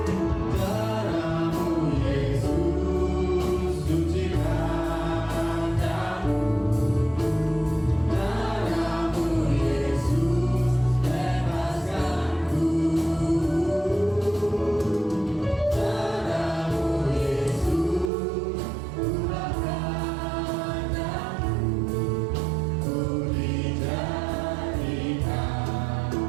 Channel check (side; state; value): left; drops out; at 18.1 s